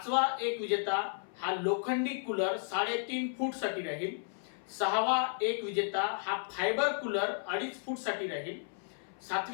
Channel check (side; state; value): right; silent; 55 dB below the other